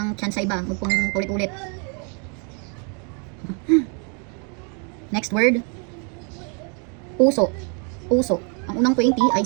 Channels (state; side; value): quieter; left; 37.9 dB